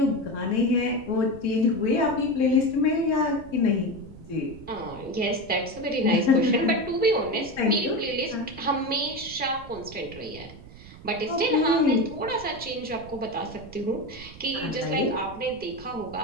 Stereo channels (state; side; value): noise; right; rumble, 17 dB below the sound